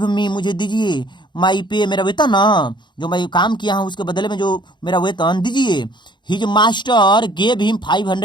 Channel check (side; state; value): right; late; 0.22 ms